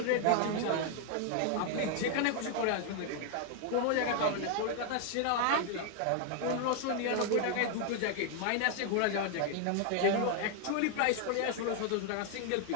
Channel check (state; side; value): different; both; correlation 0.00